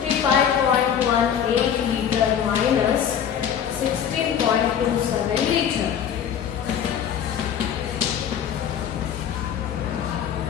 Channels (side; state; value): right; quieter; 8.7 dB